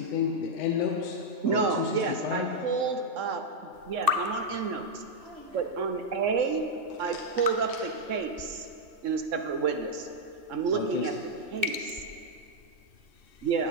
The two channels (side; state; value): left; late; 2.6 ms